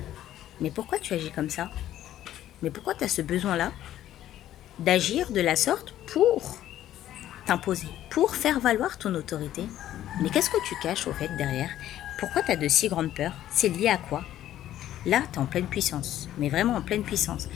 « Mais pourquoi tu agis comme ça? Mais pourquoi tu as ce besoin-là d'agir de la sorte pour t'imposer, pour faire valoir ton autorité? Mais qu'est-ce que tu caches au fait derrière? Pourquoi tu as de si grandes peurs? C'est lié à quoi? » Là, tu es en pleine puissance, mais vraiment en pleine puissance.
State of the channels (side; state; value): right; quieter; 12.6 dB